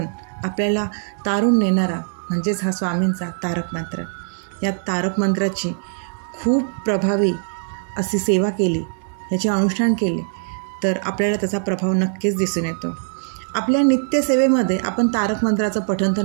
आपल्याला तारून नेणारा म्हणजेच हा स्वामींचा तारक मंत्र. या तारक मंत्राची खूप प्रभावी अशी सेवा केली, याचे अनुष्ठान केले तर आपल्याला त्याचा प्रभाव नक्कीच दिसून येतो. आपल्या नित्यसेवेमध्ये आपण तारक मंत्राचं पठण तर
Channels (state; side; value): silent; left; 65 dB below the other